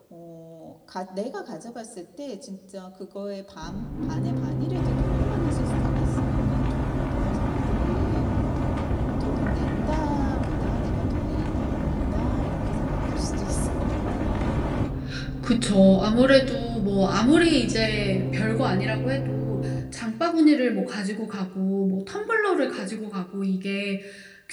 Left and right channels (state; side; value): identical; both; correlation 1.00